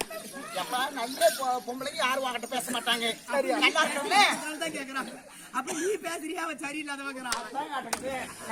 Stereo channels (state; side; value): identical; both; correlation 1.00